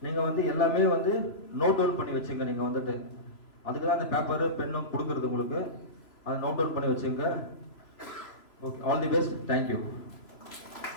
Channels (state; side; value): late; right; 3.0 ms